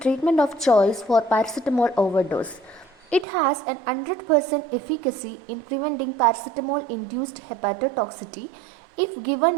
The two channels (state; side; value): drops out; left; at 3.2 s